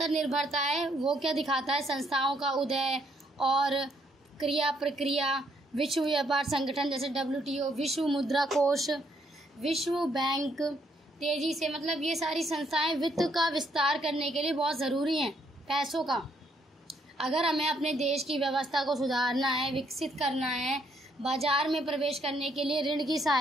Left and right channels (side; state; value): both; normal; correlation 0.71